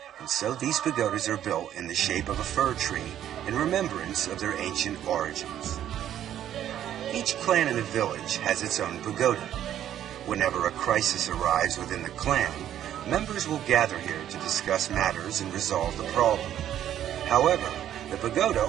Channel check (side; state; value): left; quieter; 11.1 dB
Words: and so these pagodas are built in the shape of a fir tree in remembrance of their ancient origins. Each clan in a village has its own pagoda. Whenever a crisis arrives within the clan, members will gather here to discuss matters and resolve the problem. However, the pagoda